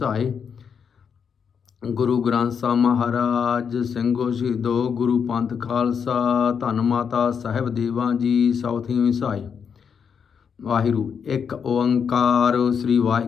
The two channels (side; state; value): right; quieter; 6.9 dB